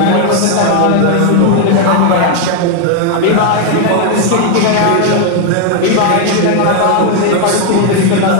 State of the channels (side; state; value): both; different; correlation 0.01